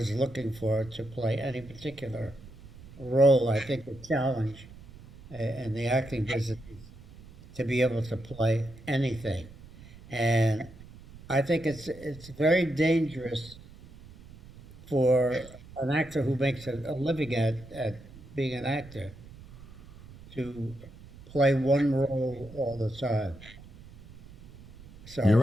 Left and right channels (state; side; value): noise; right; rumble, 19 dB below the sound